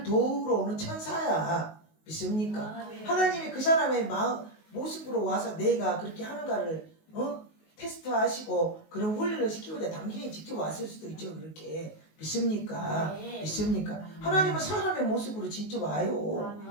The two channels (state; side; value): late; right; 19 ms